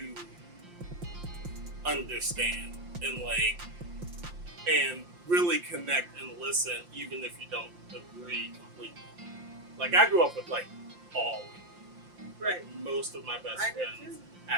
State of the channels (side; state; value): left; late; 5.7 ms